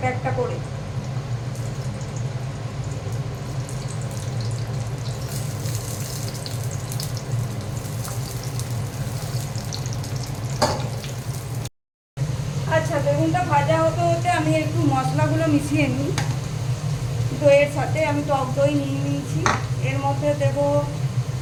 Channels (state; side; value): identical; both; correlation 1.00